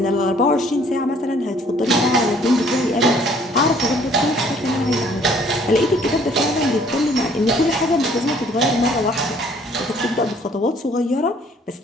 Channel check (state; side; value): normal; both; correlation 0.59